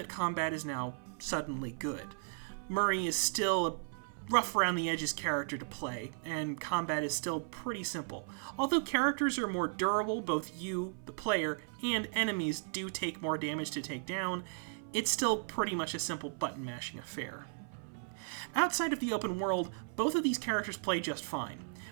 combat is now suddenly good. Murray is still a rough around the edges character to play, and combat is still pretty simple. Although characters are more durable, both you, the player, and enemies do take more damage to take down, it's still pretty much a simple button-mashing affair. Outside of the open world, both of these characters play just fine.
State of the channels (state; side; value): silent; left; 54 dB below the other